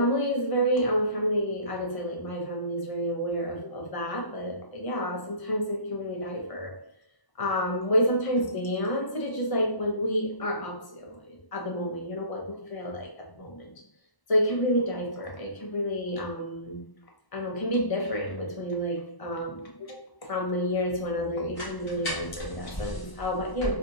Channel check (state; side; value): late; right; 1.0 ms